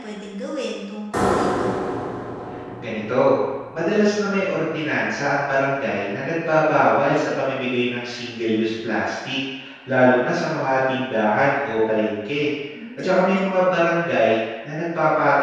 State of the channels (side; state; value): both; identical; correlation 1.00